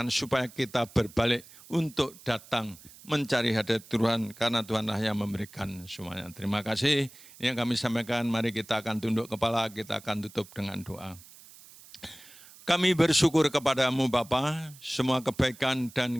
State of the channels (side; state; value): right; noise; hiss, 21 dB below the sound